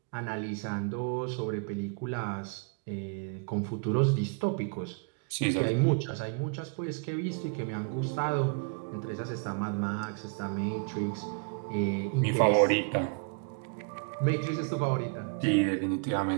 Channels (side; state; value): left; quieter; 37.4 dB